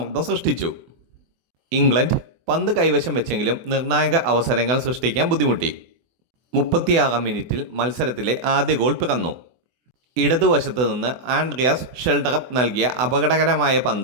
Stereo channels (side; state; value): left; late; 24 ms